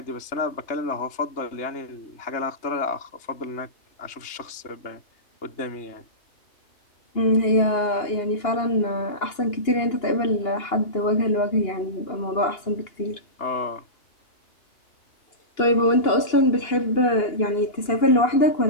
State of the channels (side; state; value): right; late; 2.9 ms